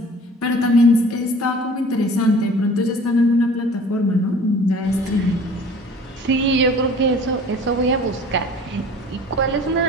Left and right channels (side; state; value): both; normal; correlation 0.47